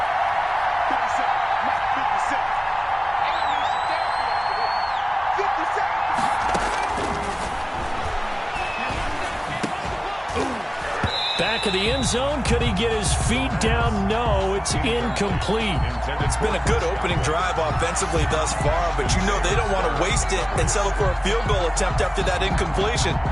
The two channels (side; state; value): both; identical; correlation 1.00